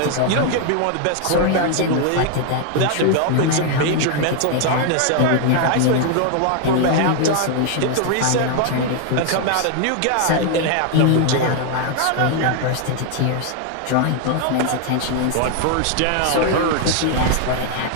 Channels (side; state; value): both; different; correlation 0.00